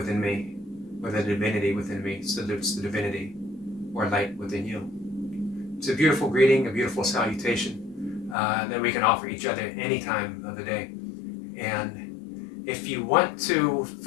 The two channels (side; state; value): right; drops out; at 8.3 s